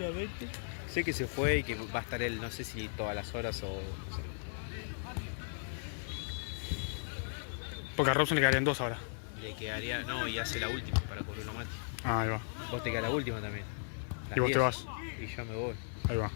Sé que se fue y que va a estar él, no sé si todas las horas o no sé. Porque a Robson le quedarían 2 ahora. Le quedaría, no, y hace la última para cubrirlo a Mati. Ah, ahí va. Vos te quedas la última también. Las Y vos te 10. vas. Y yo me voy. Ahí va.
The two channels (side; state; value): right; silent; digital silence